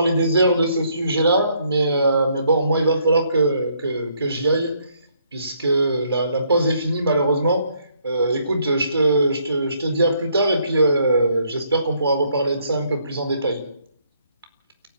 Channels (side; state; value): both; inverted; correlation -0.70